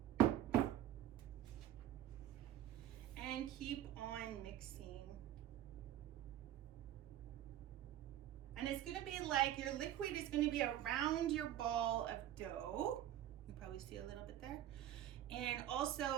And keep on mixing. And it's gonna be like, your liquid is gonna be around your ball of dough. You probably see a little bit there. And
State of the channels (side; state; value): left; quieter; 12.3 dB